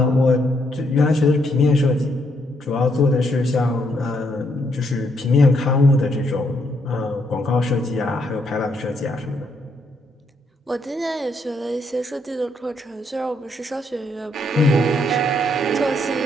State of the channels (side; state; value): both; normal; correlation 0.74